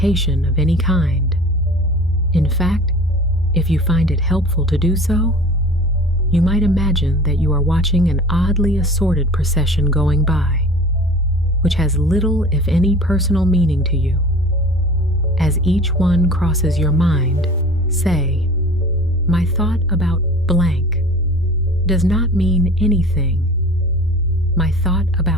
of any kind. In fact, if you find it helpful to do so, you might imagine that you are watching an oddly assorted procession going by, which has little, if any, personal meaning to you. As each one crosses your mind, say, "My thought about blank does not mean anything. My thought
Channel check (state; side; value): normal; both; correlation 0.41